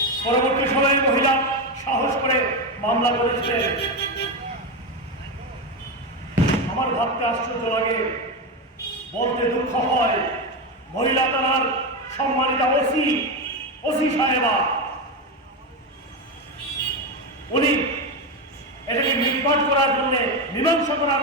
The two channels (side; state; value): both; normal; correlation 0.13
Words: পরবর্তী সময়ে মহিলা সাহস করে মামলা করেছিলেন। আমার ভাবতে আশ্চর্য লাগে, বলতে দুঃখ হয়, মহিলা তার সম্মানিত ওসি সাহেবা উনি এটাকে নির্বাচ করার জন্য মীমাংসা করার